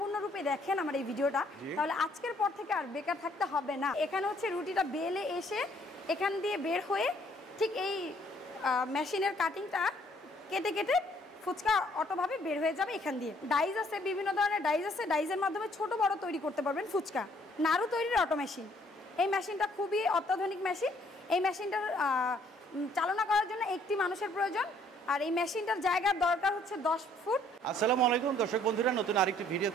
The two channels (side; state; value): both; normal; correlation 0.63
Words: দেখেন আমার এই ভিডিওটা, তাহলে আজকের পর থেকে আর বেকার থাকতে হবে না। এখানে হচ্ছে রুটিটা বেলে এসে এখান দিয়ে বের হয়ে ঠিক এই মেশিনের কাটিংটা কেটে কেটে ফুচকা অটোভাবে বের হয়ে যাবে এখান দিয়ে। ডাইস আছে, বিভিন্ন ধরনের ডাইস আছে, ডাইসের মাধ্যমে ছোট বড় তৈরি করতে পারবেন ফুচকা। নাড়ু তৈরির অটো মেশিন, এই মেশিনটা খুবই অত্যাধুনিক মেশিন। এই মেশিনটার চালনা করার জন্য একটি মানুষের প্রয়োজন, আর এই মেশিনটার জায়গার দরকার হচ্ছে 10 ফুট। আসসালামু আলাইকুম দর্শক বন্ধুরা, নতুন আরেকটি